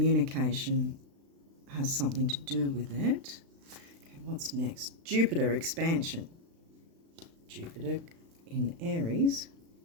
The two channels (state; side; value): late; left; 36 ms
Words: has something to do with it. Okay, what's next? Jupiter expansion. Jupiter in Aries